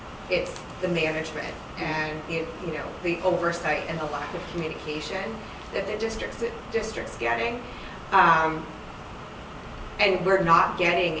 it's the management and the oversight and the lack of communication that the district's getting. And we're not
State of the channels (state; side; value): identical; both; correlation 1.00